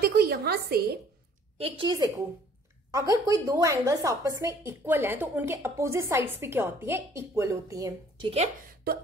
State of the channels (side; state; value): both; normal; correlation 0.56